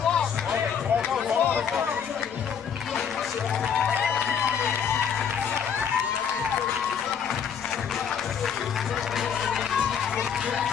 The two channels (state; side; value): quieter; right; 7.5 dB